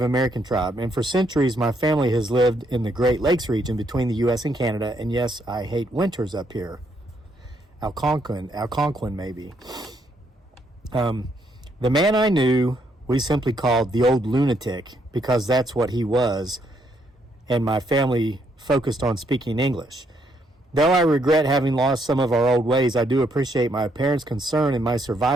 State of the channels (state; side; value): normal; both; correlation 0.73